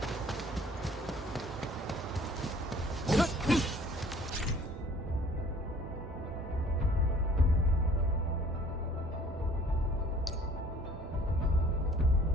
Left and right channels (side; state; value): both; normal; correlation 0.53